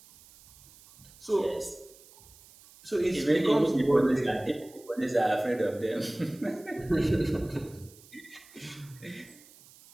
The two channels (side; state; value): right; noise; hiss, 24 dB below the sound